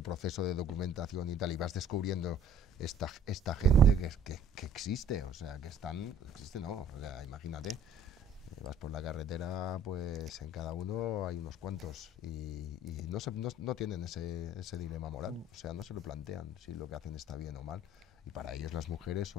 proceso de documentación y tal, y vas descubriendo esta gente que existe, o sea, existe no, o sea, imagínate, vas por la carretera, pues en cada uno hay unos cuantos y no tienen ese dilema moral, o sea, no se lo plantean si lo que hacen está bien o mal. Y para ellos las mujeres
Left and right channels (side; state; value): both; normal; correlation 0.54